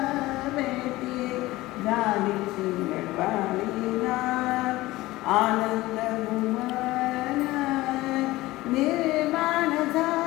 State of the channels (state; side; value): quieter; right; 18.5 dB